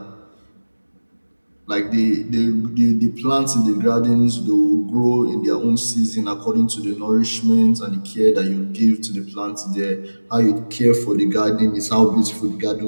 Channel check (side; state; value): both; inverted; correlation -1.00